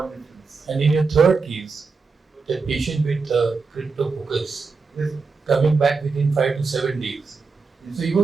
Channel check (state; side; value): quieter; left; 4.6 dB